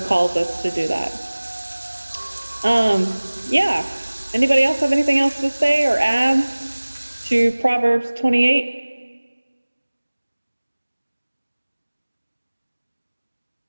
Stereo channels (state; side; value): inverted; both; correlation -1.00